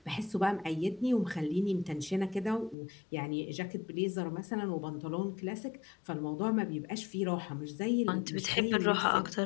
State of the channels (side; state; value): right; drops out; at 2.8 s